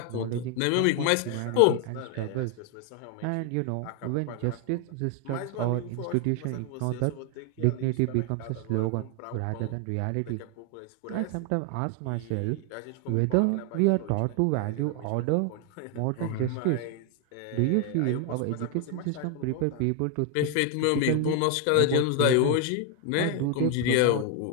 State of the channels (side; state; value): both; different; correlation 0.01